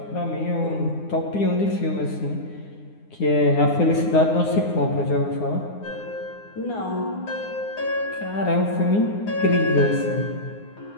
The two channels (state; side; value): late; right; 9.7 ms